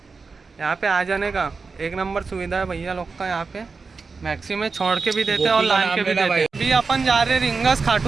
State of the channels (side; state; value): left; quieter; 4.6 dB